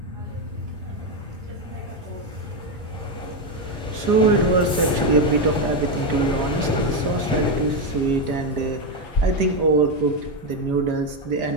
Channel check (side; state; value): both; normal; correlation 0.08